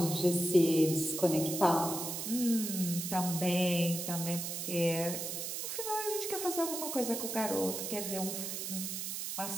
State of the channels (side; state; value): right; noise; hiss, 4 dB below the sound